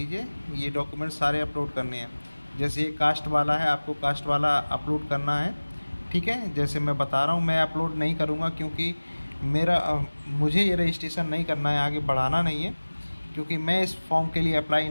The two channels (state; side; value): inverted; both; correlation -1.00